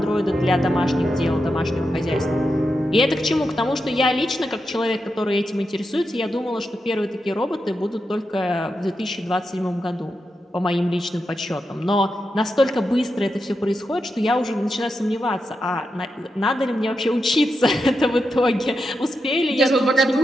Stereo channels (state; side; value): normal; both; correlation 0.87